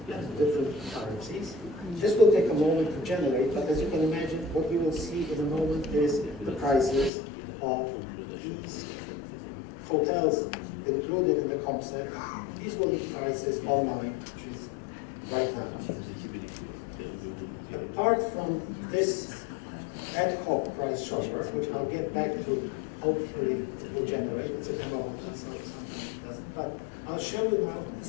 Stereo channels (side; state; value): right; drops out; at 7.1 s